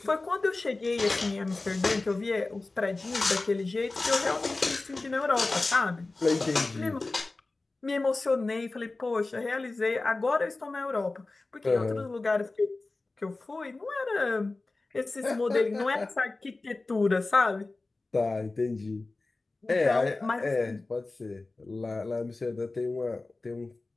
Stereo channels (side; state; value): right; quieter; 3.3 dB